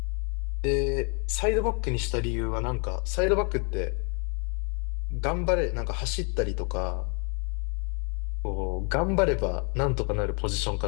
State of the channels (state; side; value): quieter; right; 37.0 dB